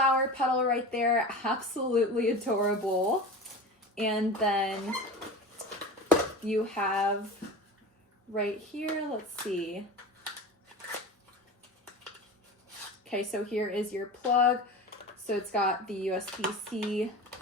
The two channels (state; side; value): normal; both; correlation 0.31